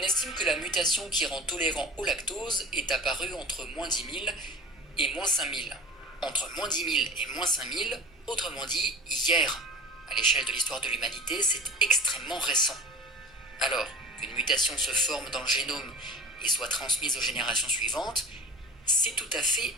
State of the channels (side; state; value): both; normal; correlation 0.37